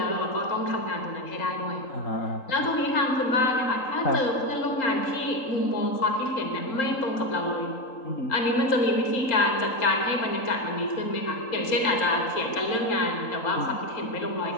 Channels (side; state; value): right; late; 3.8 ms